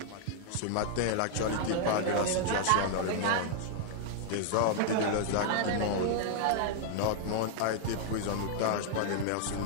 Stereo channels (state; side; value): different; both; correlation -0.01